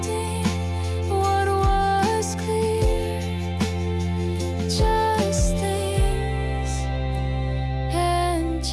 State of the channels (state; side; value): identical; both; correlation 1.00